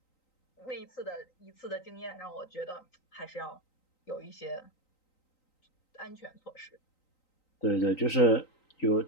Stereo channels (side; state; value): right; late; 3.9 ms